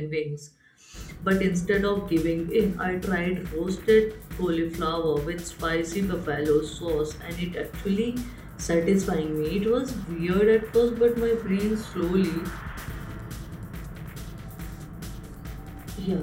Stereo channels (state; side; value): identical; both; correlation 1.00